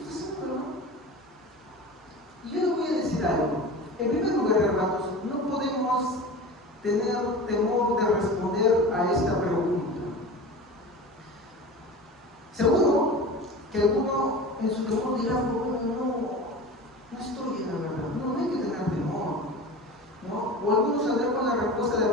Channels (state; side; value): normal; both; correlation 0.33